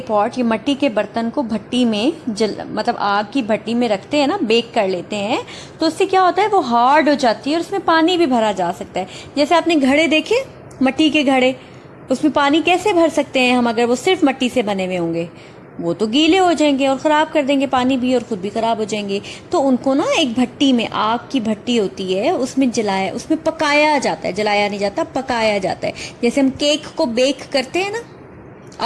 पॉट, ये मिट्टी के बर्तन को भट्टी में मतलब आग की भट्टी में रखते हैं ना, बेक कर लेते हैं, तो उससे क्या होता है, वो हार्ड हो जाती है और उसमें पानी भी भरा जा सकता है। जैसे आपने घड़े देखे, मिट्टी के घड़े, उसमें पानी कैसे भर सकते हैं हम अगर वो सिर्फ मिट्टी से बने हुए होंगे? वो तो गीले हो जाएंगे और ख़राब कर देंगे पानी भी, और ख़ुद भी ख़राब हो जाएंगे। तो उनको ना एक भट्टी में, आग की भट्टी होती है, उसमें पकाया जाता है, जलाया नहीं जाता, पकाया जाता है। जैसे हम केक को बेक करते हैं ना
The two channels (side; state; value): both; identical; correlation 1.00